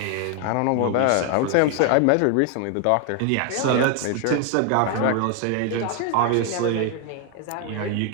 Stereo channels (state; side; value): different; both; correlation 0.00